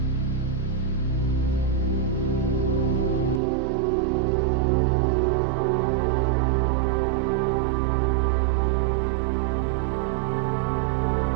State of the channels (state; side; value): drops out; left; at 3.4 s